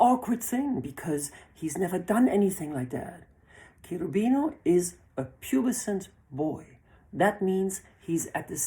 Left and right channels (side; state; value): both; identical; correlation 1.00